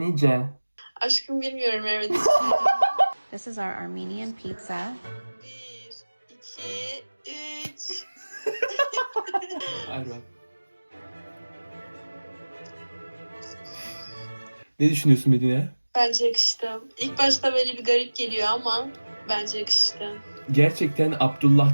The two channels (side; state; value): both; inverted; correlation -1.00